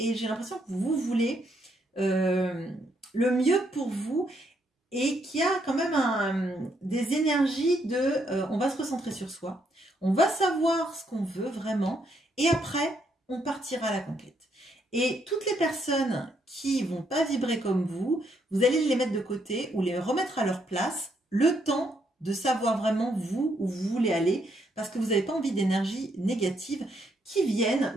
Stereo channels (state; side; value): normal; both; correlation 0.74